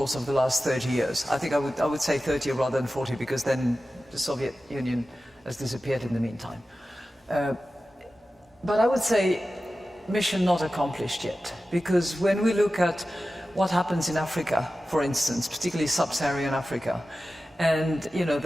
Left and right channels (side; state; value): both; normal; correlation 0.94